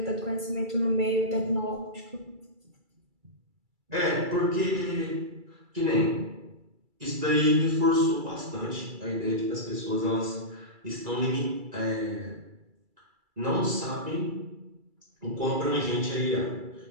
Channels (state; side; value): late; left; 2.3 ms